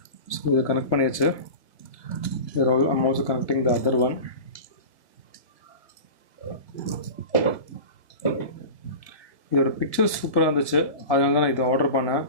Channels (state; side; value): late; right; 1.9 ms